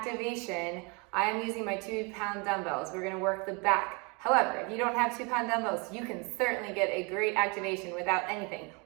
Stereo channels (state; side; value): quieter; left; 31.0 dB